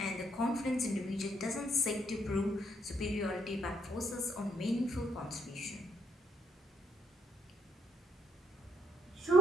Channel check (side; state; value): both; normal; correlation 0.72